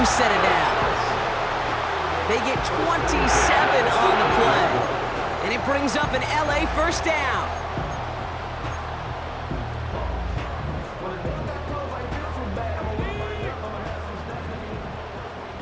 set of downs. They get 27 on the play, and it brings up an LA first down.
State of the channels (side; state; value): both; identical; correlation 1.00